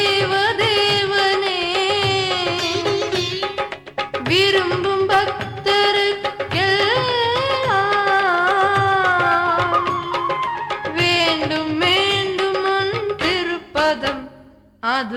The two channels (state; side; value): identical; both; correlation 1.00